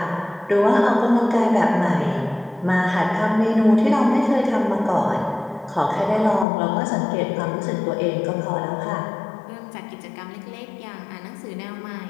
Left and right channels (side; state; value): right; drops out; at 6.5 s